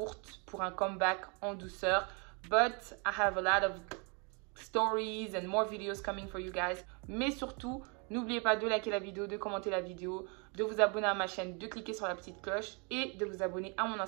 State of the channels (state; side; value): quieter; left; 33.8 dB